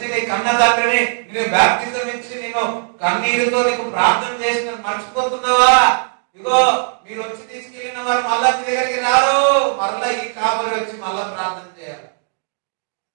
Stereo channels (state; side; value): silent; left; 64 dB below the other